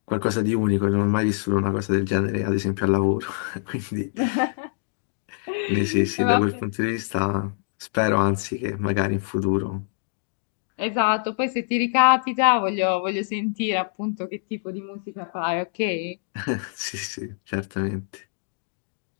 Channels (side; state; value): right; silent; digital silence